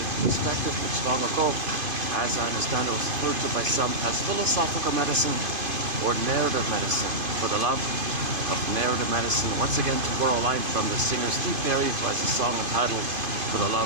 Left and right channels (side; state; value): left; late; 2.5 ms